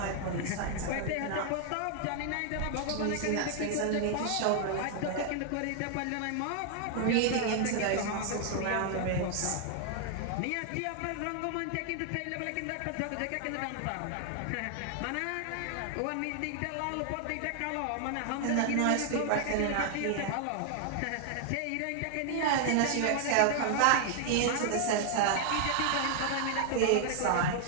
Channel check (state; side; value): different; both; correlation 0.00